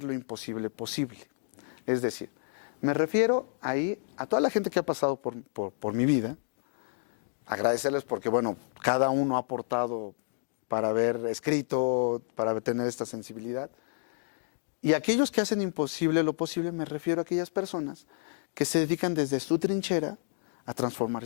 lo imposible posible. Es decir, me refiero ahí a toda la gente que ha pasado por mi vida, agradecerles porque, bueno, cada uno ha aportado para haber escrito, para tener esta sensibilidad. Y aquellos que hacen imposible lo posible, me refiero a aquellas personas que se dedican desde su trinchera a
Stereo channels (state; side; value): silent; right; digital silence